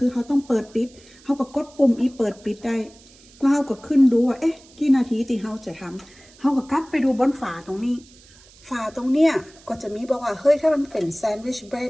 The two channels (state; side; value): noise; right; hiss, 25 dB below the sound